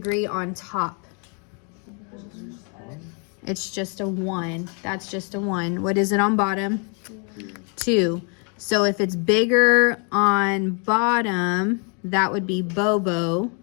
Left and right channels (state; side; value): quieter; right; 37.8 dB